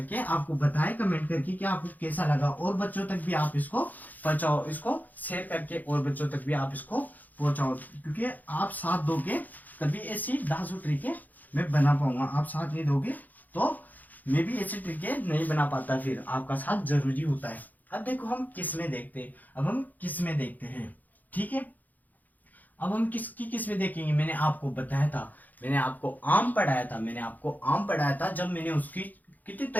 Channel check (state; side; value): late; right; 0.082 ms